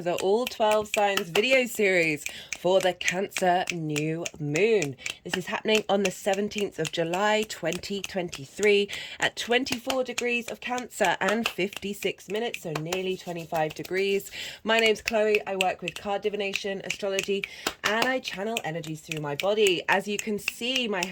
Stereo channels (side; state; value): both; identical; correlation 1.00